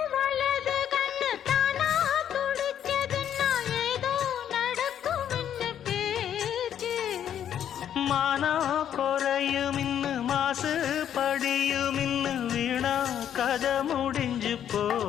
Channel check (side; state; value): right; quieter; 9.8 dB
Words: மானா குறையும் இன்னு மாசு படியும் இன்னு வீணா கதை முடிஞ்சு